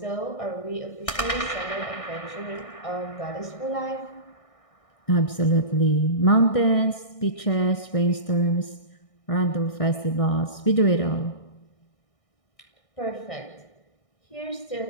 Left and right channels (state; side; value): late; right; 1.6 ms